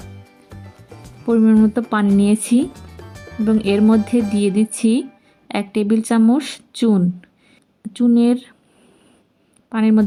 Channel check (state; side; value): identical; both; correlation 1.00